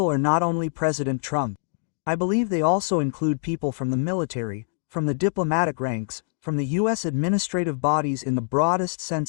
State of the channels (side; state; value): right; silent; digital silence